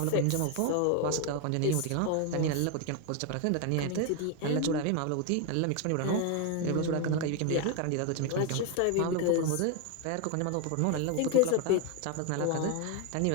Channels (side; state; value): both; different; correlation 0.01